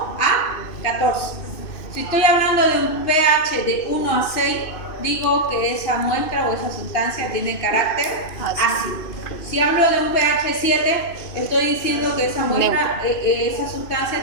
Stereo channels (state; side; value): late; right; 2.5 ms